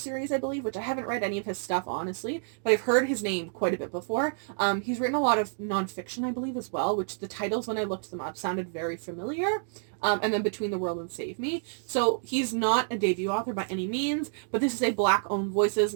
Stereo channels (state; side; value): silent; left; digital silence